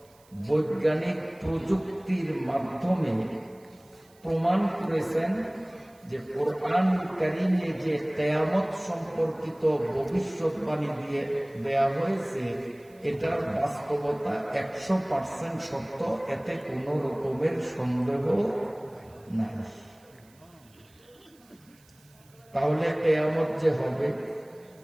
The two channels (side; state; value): right; noise; hiss, 30 dB below the sound